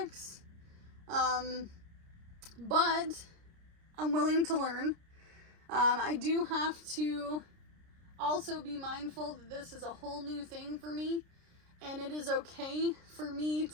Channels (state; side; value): late; left; 30 ms